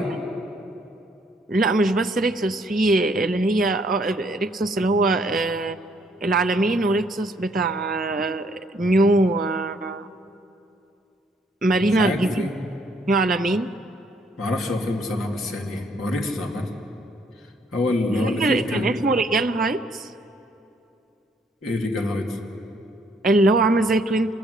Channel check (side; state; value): both; normal; correlation 0.67